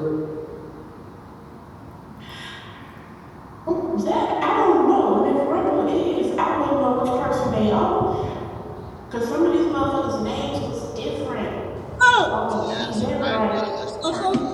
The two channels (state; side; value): identical; both; correlation 1.00